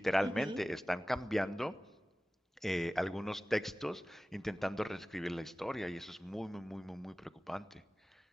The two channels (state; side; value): normal; both; correlation 0.97